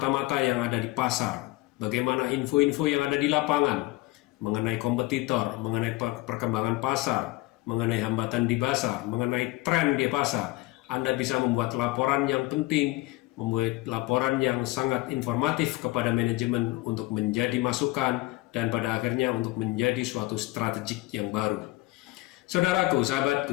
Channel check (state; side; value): quieter; right; 20.3 dB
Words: yang ada di pasar, bagaimana info-info yang ada di lapangan mengenai kompetitor, mengenai perkembangan pasar, mengenai hambatan di pasar, mengenai tren di pasar. Anda bisa membuat laporan yang penting, membuat laporan yang sangat informatif kepada manajemen untuk menjadi masukan dan pada akhirnya untuk menjadi suatu strategik yang baru. Saudaraku,